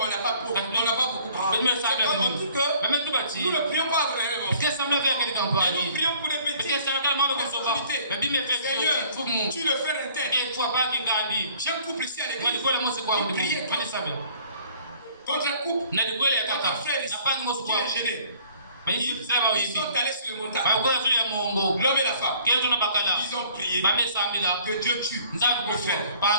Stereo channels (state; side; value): inverted; both; correlation -0.55